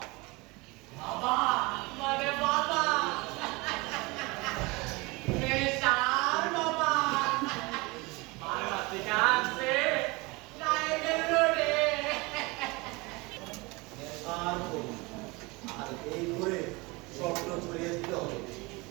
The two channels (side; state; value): left; quieter; 24.9 dB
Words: বাবা মানে বাবা নেশার বাবা বারবাতি কাছে লাইনের রোডে আর করুন। আর এই করে স্বপ্ন ছড়িয়ে দিতে হবে